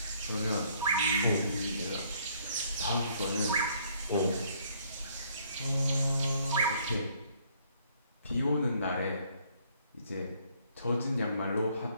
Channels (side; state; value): both; inverted; correlation -0.64